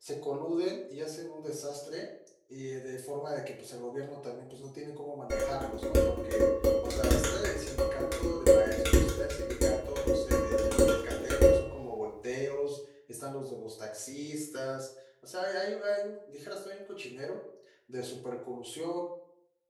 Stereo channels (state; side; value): identical; both; correlation 1.00